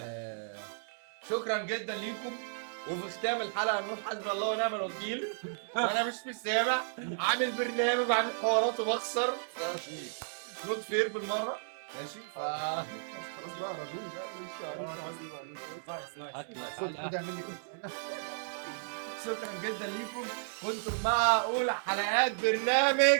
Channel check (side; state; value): left; silent; 55 dB below the other